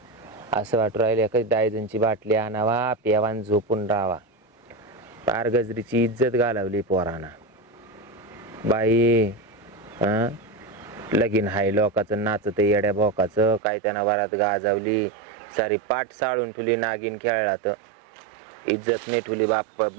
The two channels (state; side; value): drops out; left; at 13.6 s